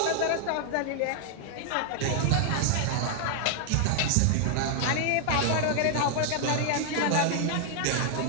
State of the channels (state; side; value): different; both; correlation 0.00